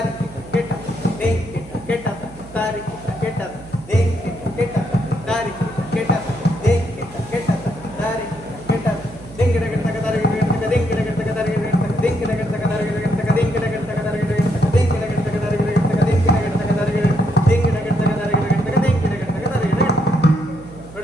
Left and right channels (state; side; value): noise; right; hum, 18 dB below the sound